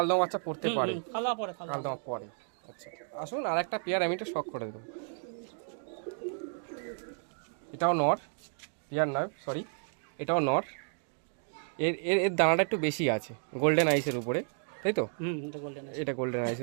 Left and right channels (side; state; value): left; silent; 56 dB below the other